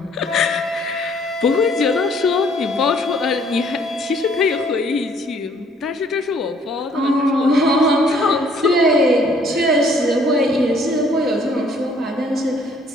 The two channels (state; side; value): normal; both; correlation 0.61